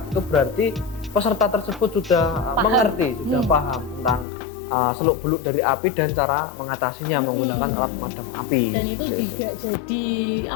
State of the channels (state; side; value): drops out; right; at 4.2 s